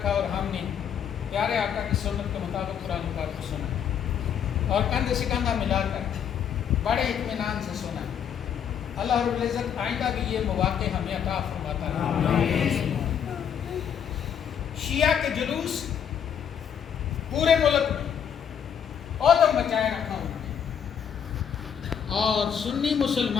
اور ہم نے پیارے آقا کی سنت کے مطابق قرآن پاک کو سنا اور کندھے سے کندھا ملا کر بڑے اطمینان سے سنا۔ اللہ رب العزت آئندہ بھی یہ مواقع ہمیں عطا فرماتا رہے۔ شیعہ کے جلوس پورے ملک میں عدم مچائے رکھا انہوں نے، اور سنی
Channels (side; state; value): right; quieter; 8.2 dB